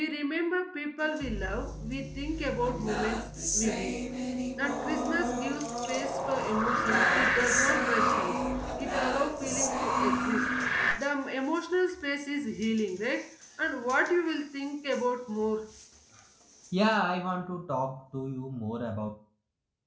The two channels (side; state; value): both; identical; correlation 1.00